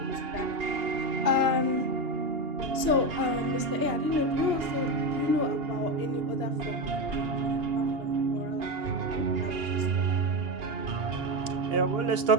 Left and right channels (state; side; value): late; left; 2.8 ms